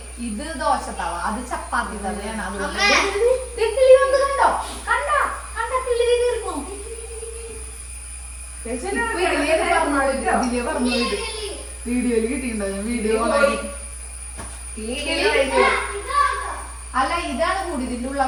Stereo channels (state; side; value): identical; both; correlation 1.00